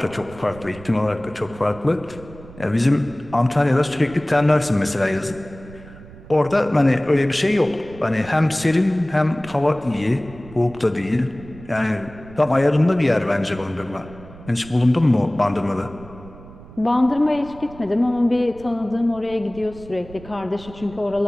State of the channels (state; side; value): noise; right; rumble, 18 dB below the sound